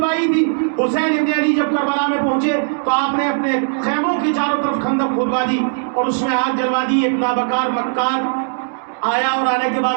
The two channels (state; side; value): silent; left; digital silence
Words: تھی. حسین ابن علی جب کربلا میں پہنچے تو آپ نے اپنے خیموں کی چاروں طرف خندق کھلوا دی اور اس میں آگ جلوا دی. ایک نابکار مکار آیا اور آنے کے